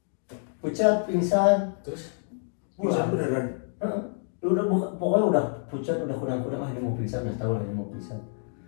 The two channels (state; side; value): silent; right; 60 dB below the other